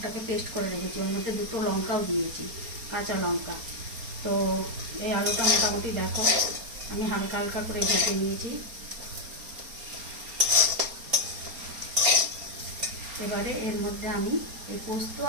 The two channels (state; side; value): late; left; 4.3 ms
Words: পেস্ট করে রেখেছি। ওর মধ্যে দুটো লঙ্কাও দিয়েছি, কাঁচা লঙ্কা। তো এই আলুটা মোটামুটি দেখো আমি হালকা হালকা করে ভেজে নিয়েছি। এবারে এর মধ্যে আমি এই পোস্ত